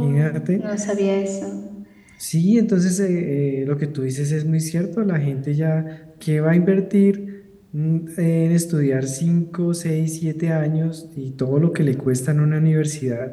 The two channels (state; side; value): identical; both; correlation 1.00